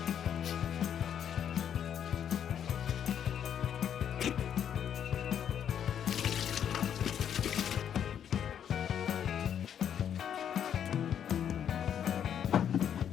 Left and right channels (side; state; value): right; quieter; 9.0 dB